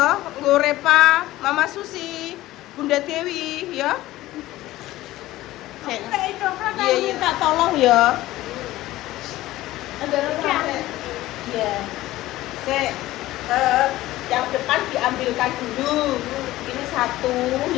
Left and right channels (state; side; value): quieter; right; 16.4 dB